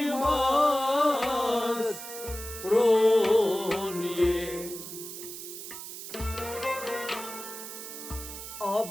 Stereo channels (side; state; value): right; noise; hiss, 10 dB below the sound